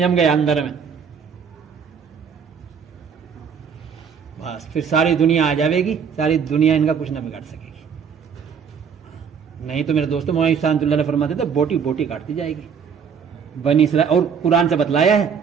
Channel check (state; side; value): quieter; left; 6.8 dB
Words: گیا اندر میں, بس پھر ساری دنیا آ جاوے گی, ساری دنیا ان کا کچھ نہ بگاڑ سکے گی. نہیں تو میرے دوستوں مولانا شاہد اللہ نے فرماتے تھے بوٹی کاٹتی جائے گی. بنی اسرائیل, اور قرآن سے بتلایا ہے,